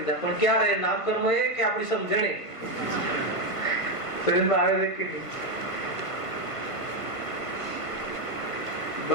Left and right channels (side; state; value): right; late; 1.3 ms